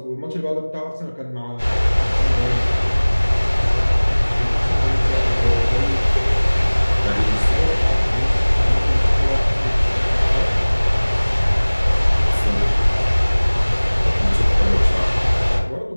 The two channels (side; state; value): both; inverted; correlation -1.00